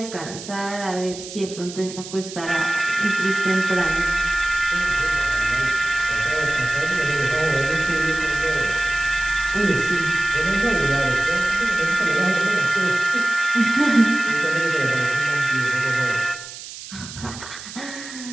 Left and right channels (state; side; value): noise; right; hiss, 13 dB below the sound